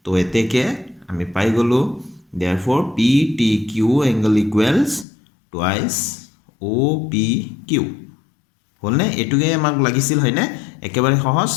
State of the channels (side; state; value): right; drops out; at 5.1 s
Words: তো এতেকে আমি পাই গ'লোঁ therefore p t q angle equals twice o p q হলনে এটুকে আমাক লাগিছিল হয়নে একেবাৰে সহজ